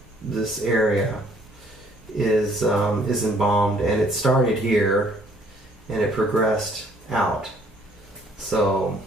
area is embalmed, and it started here and it progressed out. So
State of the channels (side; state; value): both; normal; correlation 0.62